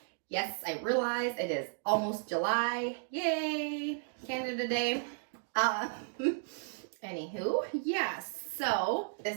Yes, I realize it is almost July. Yay! Canada Day. Anywho, yes. So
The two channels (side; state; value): left; silent; digital silence